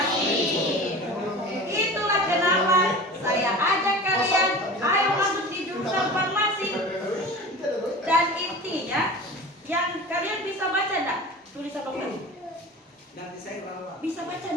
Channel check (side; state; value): both; normal; correlation 0.35